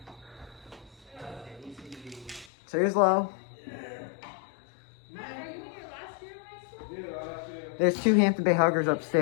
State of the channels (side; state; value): right; drops out; at 2.5 s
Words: So here's low. Matt, are you in your last year of high school? Yeah, last year. There's 2 Hampton Bay huggers